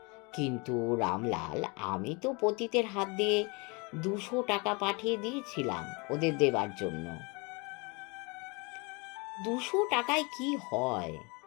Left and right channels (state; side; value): quieter; right; 29.1 dB